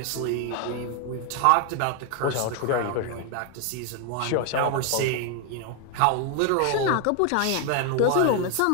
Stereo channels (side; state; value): both; different; correlation 0.01